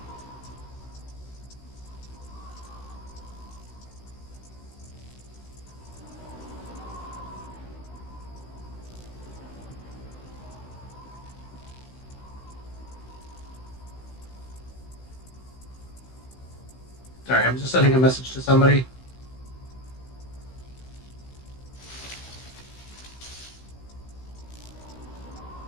Sorry, I'm just sending a message to somebody.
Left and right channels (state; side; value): late; right; 16 ms